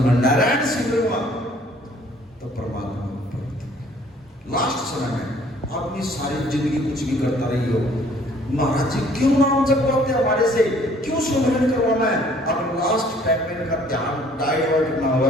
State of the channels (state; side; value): normal; both; correlation 0.58